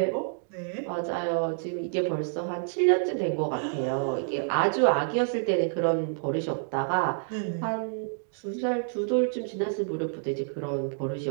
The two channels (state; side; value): silent; left; digital silence